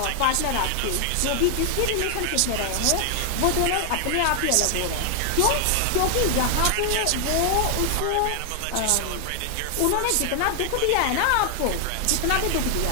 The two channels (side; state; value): both; different; correlation 0.00